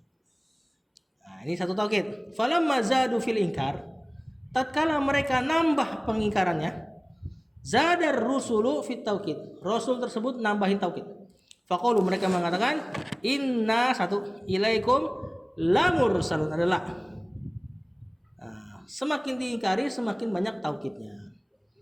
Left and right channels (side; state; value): both; identical; correlation 1.00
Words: Nah, ini satu taukid. Falamma zadu fil inkar, tatkala mereka nambah pengingkarannya, zadar rusulu fit taukid, rasul tersebut nambahin taukid. Faqalu, mereka mengatakan, inna satu ilaikum la mursalun, adalah semakin diingkari semakin banyak taukidnya.